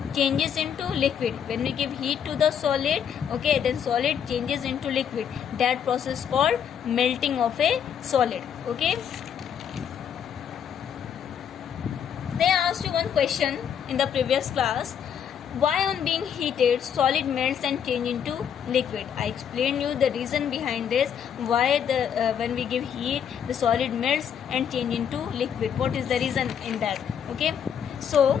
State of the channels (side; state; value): right; quieter; 8.3 dB